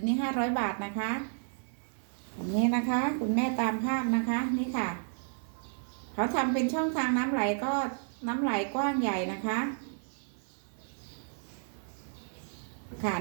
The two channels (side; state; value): left; silent; digital silence